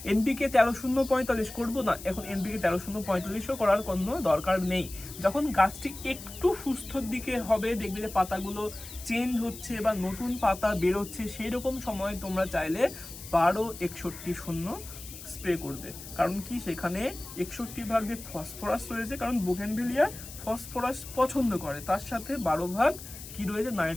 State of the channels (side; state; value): left; noise; hiss, 14 dB below the sound